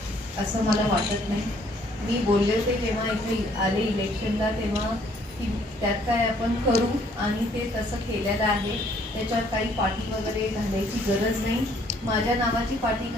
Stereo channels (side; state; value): both; normal; correlation 0.63